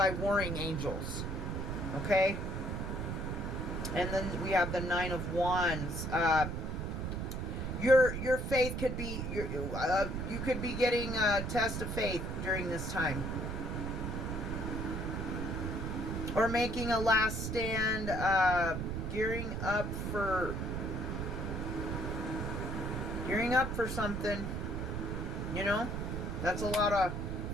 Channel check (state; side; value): noise; right; rumble, 3 dB below the sound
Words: warring angels. Okay? And then we have the Nine of Wands. Your faith could be, you could be getting a test of faith during this time. Or making a last stand, gearing up for something. You know? That's a lot of